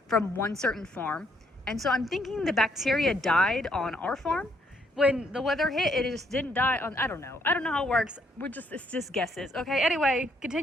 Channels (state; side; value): normal; both; correlation 0.70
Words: from one certain farm. And so I'm thinking the bacteria died on our farm. When the weather hit, it just didn't die on, I don't know how it works. It's just guesses. Okay, anyway,